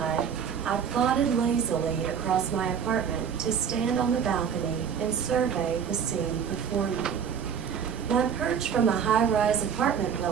I plodded lazily across my apartment to stand on the balcony and survey the scene before me. My perch from a high-rise apartment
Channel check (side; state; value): left; quieter; 7.5 dB